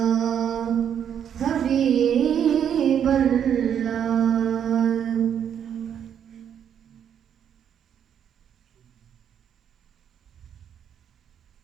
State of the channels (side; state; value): left; quieter; 8.7 dB